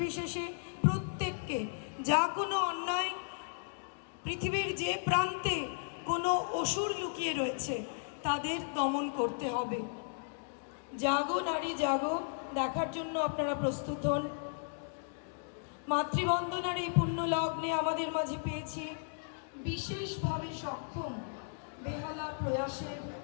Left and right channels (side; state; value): right; silent; digital silence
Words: প্রত্যেককে যা কোনো অন্যায়, পৃথিবীর যে প্রান্তে কোনো অসুর লুকিয়ে রয়েছে তাদের দমন করতে হবে। জাগো নারী জাগো দেখার জন্য আপনারা প্রস্তুত হন। মাতৃবন্দনার এই পুণ্য লগ্নে আমাদের মাঝে পেয়েছি বিশেষভাবে সক্ষম বেহালা